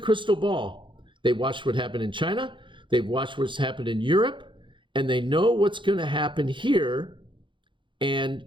ball. They watched what happened in China. They've watched what's happened in Europe, and they know what's going to happen here.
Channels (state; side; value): late; left; 0.24 ms